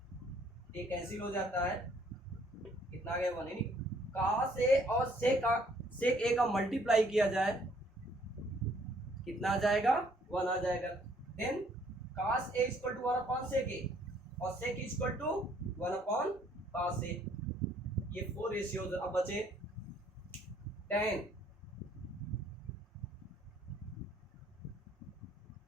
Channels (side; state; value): both; normal; correlation 0.63